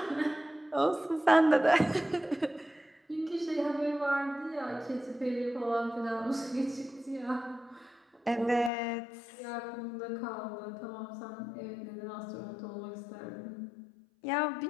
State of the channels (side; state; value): right; drops out; at 8.7 s